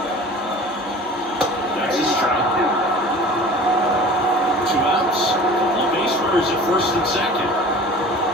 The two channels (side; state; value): both; normal; correlation 0.42